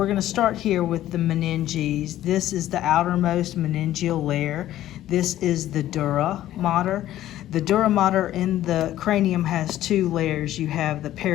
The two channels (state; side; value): quieter; right; 13.4 dB